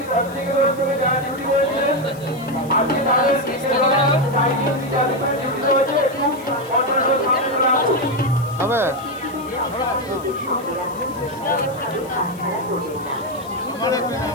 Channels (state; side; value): noise; left; hiss, 21 dB below the sound